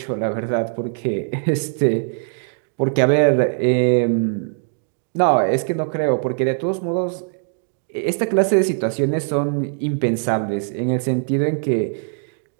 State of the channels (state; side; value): silent; left; 65 dB below the other